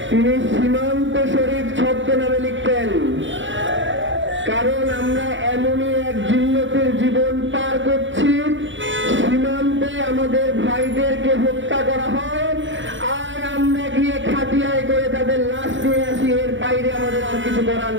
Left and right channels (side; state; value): left; late; 0.55 ms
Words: তিনি সীমান্ত শরীফ ছদ্মনামে লিখতেন। কারণ আমরা এমনই এক জিন্নতের জীবন পার করছি, সীমান্তে আমাদের ভাইদেরকে হত্যা করা হয় আর আমরা গিয়ে খাটিয়ায় করে তাদের লাশ নিয়ে আসি। এর বাইরে আমাদের আর কিছু করার